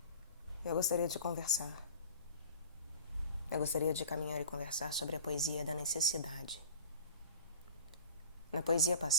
Eu gostaria de conversar. Eu gostaria de caminhar e conversar sobre a poesia da necessidade. Na poesia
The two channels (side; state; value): both; inverted; correlation -0.43